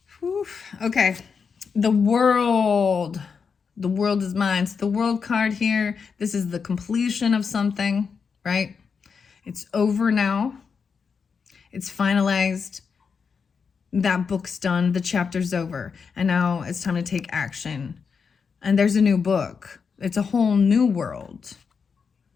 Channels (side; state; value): right; quieter; 5.8 dB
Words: Oof. Okay. The world. The world is mine. So the world card here, this is the completion of something, right? It's over now. It's finalized. That book's done. The chapter's over. And now it's time to take action. And there's a new book. It's a whole new world.